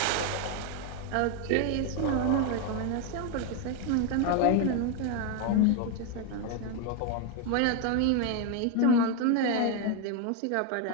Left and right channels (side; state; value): both; different; correlation 0.01